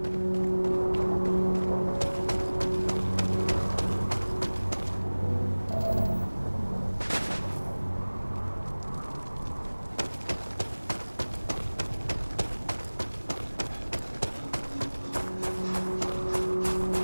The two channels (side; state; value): both; inverted; correlation -1.00